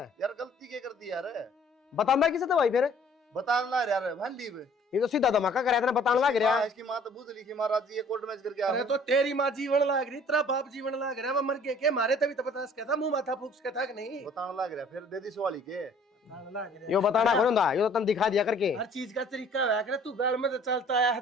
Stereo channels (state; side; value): normal; both; correlation 0.55